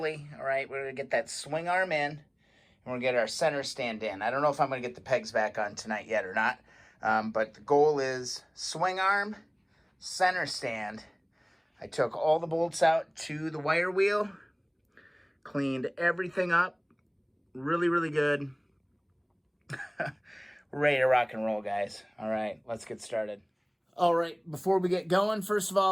All right, we're gonna get that swing arm in and we're gonna get our center stand in. I don't know if I'm gonna get the pegs back on tonight yet or not, but the goal is swing arm, center stand. I took all the bolts out to the wire wheel, cleaned everything up, really good. We're ready to rock and roll, guys. All right, let's get started. All right, before we get going, first of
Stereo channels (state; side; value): identical; both; correlation 1.00